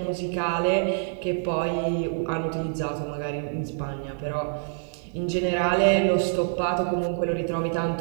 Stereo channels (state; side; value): silent; left; 61 dB below the other